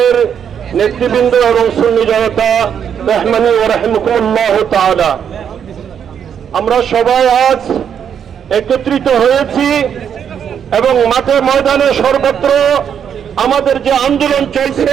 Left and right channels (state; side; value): quieter; left; 8.2 dB